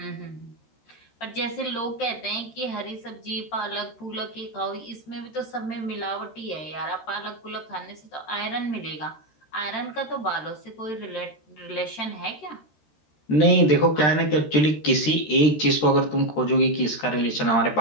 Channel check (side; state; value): right; late; 13 ms